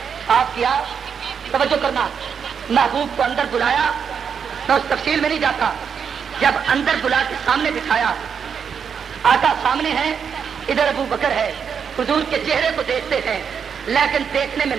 صاف کیا, توجہ کرنا, محبوب کو اندر بلایا. میں اس تفصیل میں نہیں جاتا. جب اندر بلا کے سامنے بٹھایا, آقا سامنے ہے, ادھر ابو بکر ہے. حضور کے چہرے کو دیکھتے ہیں لیکن دیکھنے میں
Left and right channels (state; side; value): quieter; left; 7.0 dB